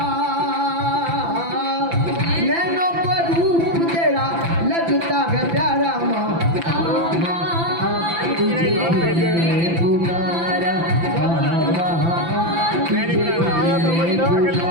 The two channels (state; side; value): late; left; 5.9 ms